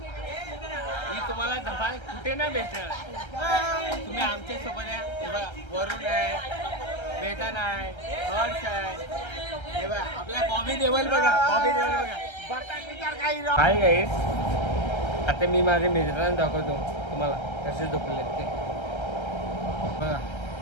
ही तुम्हाला धमाल कुठे नाही भेटणार. तुम्ही आमच्या सोबत आहे. हे बघा वरुण आहे, वेतन आहे, हर्ष आहे. हे बघा आपला बॉबी देवल बघा, बॉबी देवल बघा. काय काय आता मी माझ्या मित्रांना दाखवतो तुम्हाला कसे झोपले ते. बघा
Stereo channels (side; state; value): right; late; 1.3 ms